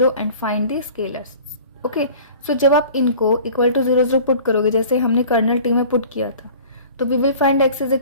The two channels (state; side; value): inverted; both; correlation -0.45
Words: and find the scalars. Okay, so जब आप इनको equal to 0 0 put करोगे जैसे हमने कर्नल टी में पुट किया था, तो we will find x is